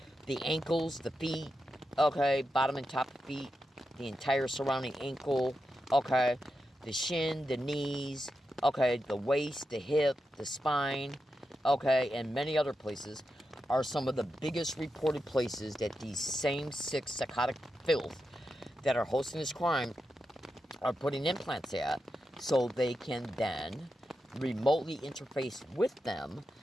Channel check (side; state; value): both; normal; correlation 0.88